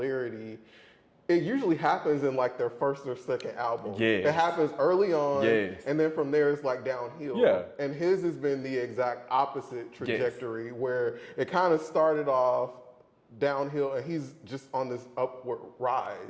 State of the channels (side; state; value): both; identical; correlation 1.00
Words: it usually happens in like their first or second album. Yes. It happens early on, Yes. and then from there it's like downhill. Yeah. And his has been the exact opposite trajectory where it kind of started off downhill and he's just on this upward